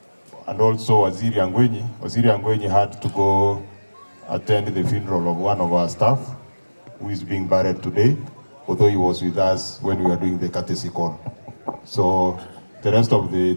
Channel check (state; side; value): inverted; both; correlation -1.00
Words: And also Waziri Angwenyi. Waziri Angwenyi had to go attend the funeral of one of our staff who is being buried today, although he was with us when we were doing the courtesy call. So the rest of the